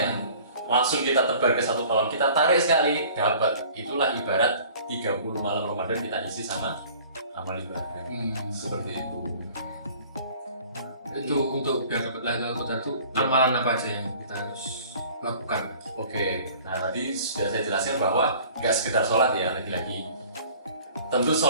langsung kita tebar ke satu kolam, kita tarik sekali, dapat. Itulah ibarat 30 malam Ramadan kita isi sama amal ibadah. Seperti itu. Itu untuk biar dapat Lailatul Qadar itu amalan apa aja yang kita harus lakukan? Oke, nah tadi sudah saya jelaskan bahwa nggak sekedar sholat ya, lagi-lagi. Tentu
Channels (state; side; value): inverted; both; correlation -0.49